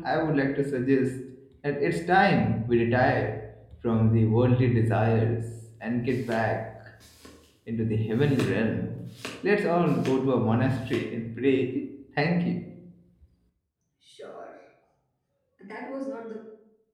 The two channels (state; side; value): identical; both; correlation 1.00